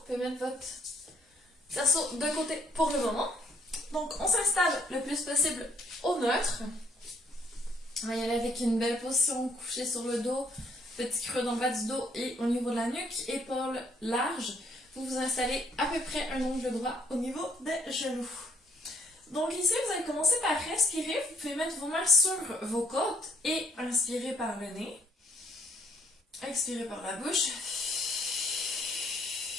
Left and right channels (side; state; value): both; normal; correlation 0.66